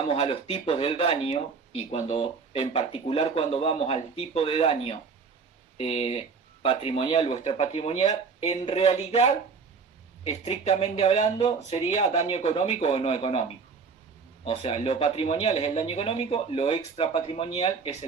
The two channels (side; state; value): left; quieter; 5.2 dB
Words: a los tipos del daño y en particular cuando vamos al tipo de daño patrimonial o extrapatrimonial, en realidad, estrictamente hablando, sería daño económico o no económico. O sea, lo patrimonial es el daño económico, lo extrapatrimonial es